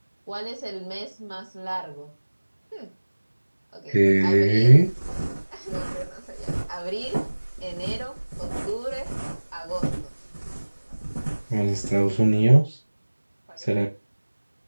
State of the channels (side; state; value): both; inverted; correlation -1.00